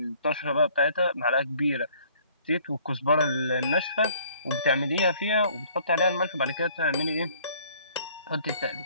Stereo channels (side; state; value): both; inverted; correlation -0.58